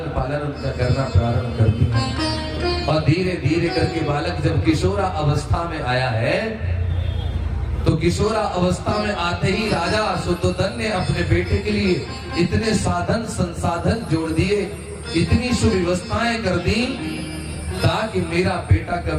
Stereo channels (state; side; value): identical; both; correlation 1.00